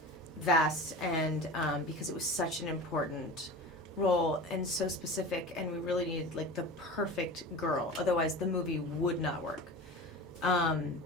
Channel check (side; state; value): both; normal; correlation 0.33